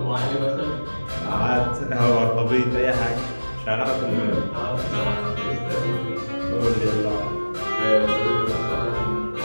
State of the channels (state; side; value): inverted; both; correlation -1.00